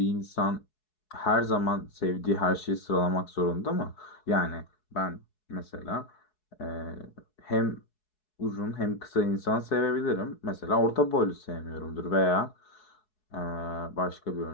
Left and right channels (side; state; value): right; late; 4.7 ms